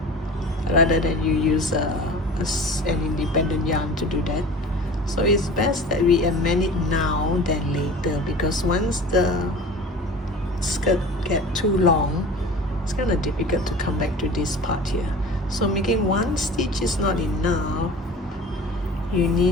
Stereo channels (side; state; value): both; normal; correlation 0.39